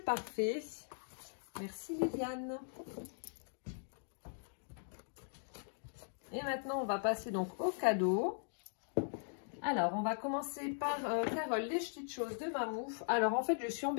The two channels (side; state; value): right; silent; digital silence